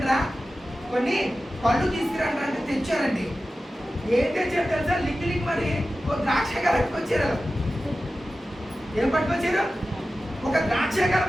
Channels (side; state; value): both; normal; correlation 0.94